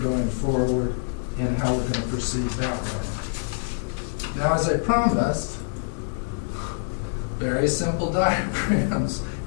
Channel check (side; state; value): right; silent; digital silence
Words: forward and how we're going to proceed that way. Now, as I promised, very simple diagrams,